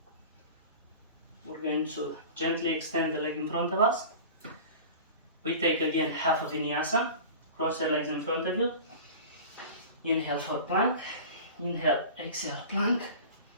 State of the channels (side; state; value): both; inverted; correlation -0.37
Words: we're going to gently extend the leg in front of us. We take again half a vinyasa. Cross your legs in front of you. Inhale for plank. Inhale, exhale, plank.